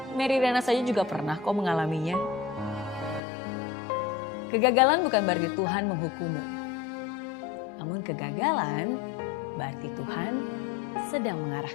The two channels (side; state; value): right; drops out; at 3.2 s